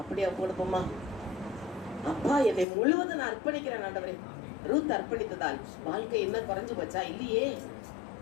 அப்படியே கொடுப்போமா? அப்பா, என்னை முழுவதும் நான் அர்ப்பணிக்கிறேன் ஆண்டவரே. ரூத் அர்ப்பணித்ததால் வாழ்க்கை என்ன குறைஞ்சு போச்சா? இல்லையே.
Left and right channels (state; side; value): drops out; right; at 2.7 s